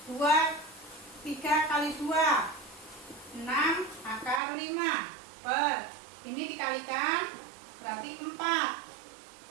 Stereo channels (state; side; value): drops out; left; at 4.4 s